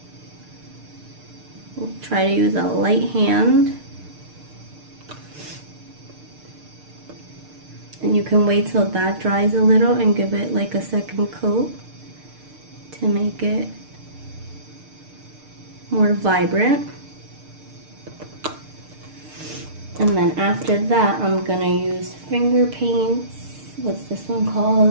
We'll try to use a light hand. And you can wait till that dries a little and give it like a second coat to make it more vibrant. And then after that, I'm gonna use finger paints. What's this one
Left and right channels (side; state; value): left; late; 6.6 ms